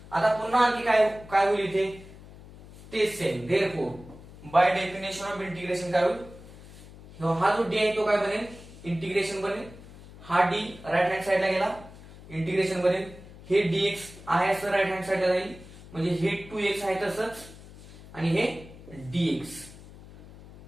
आता पुन्हा आणखी काय होईल इथे? तेच same. Therefore by definition of integration काय होईल? हा जो d आहे तो काय बनेल? इंटिग्रेशन बनेल. हा d राईट हँड साइडला गेला, इंटिग्रेशन बनेल. हे dx आहे असं राईट हँड साइडला जाईल, म्हणजे हे 2x आहे तसंच आणि हे dx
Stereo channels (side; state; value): left; noise; hum, 18 dB below the sound